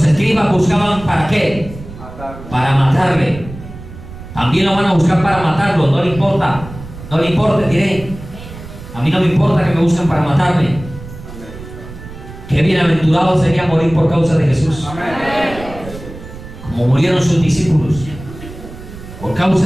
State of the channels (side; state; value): right; noise; rumble, 14 dB below the sound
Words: escribas buscaban ¿para qué? Para matarle. También lo van a buscar para matarlo, no le importa. No le importa, diré. A mí no me importa que me busquen para matarme. Qué bienaventurado sería morir por causa de Jesús. Como murieron sus discípulos. Por